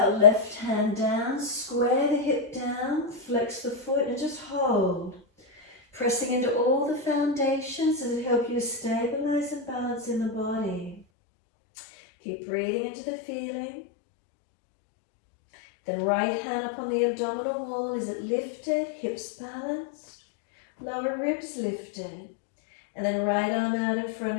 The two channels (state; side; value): drops out; right; at 11.1 s